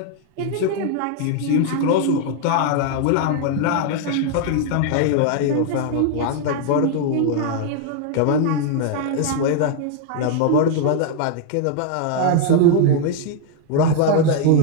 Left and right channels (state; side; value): different; both; correlation 0.00